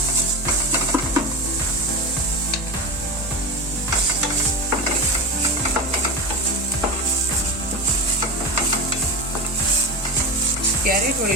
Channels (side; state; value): both; normal; correlation 0.22